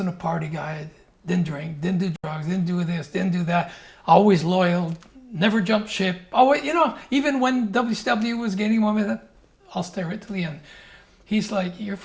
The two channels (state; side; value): identical; both; correlation 1.00